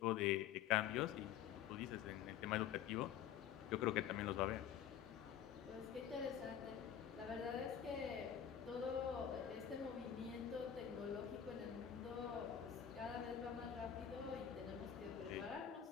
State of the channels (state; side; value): quieter; right; 9.4 dB